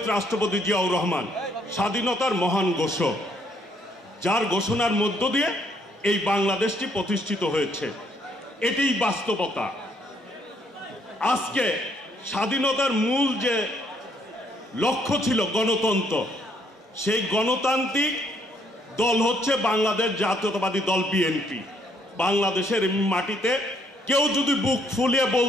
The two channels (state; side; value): normal; both; correlation 0.69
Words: রাষ্ট্রপতি জিয়াউর রহমান স্বাধীনতার মহান ঘোষক, যার ঘোষণার মধ্য দিয়ে এই বাংলাদেশটি প্রতিষ্ঠিত হয়েছে। এটিই বাস্তবতা। আজকে স্বাধীনতার মূল যে লক্ষ্য ছিল গণতন্ত্র, সেই গণতান্ত্রিক দল হচ্ছে বাংলাদেশ জাতীয়তাবাদী দল বিএনপি। বাংলাদেশের মাটিতে কেউ যদি বুক ফুলিয়ে